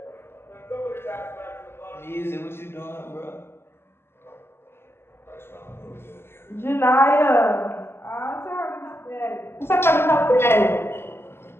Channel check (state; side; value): late; right; 0.12 ms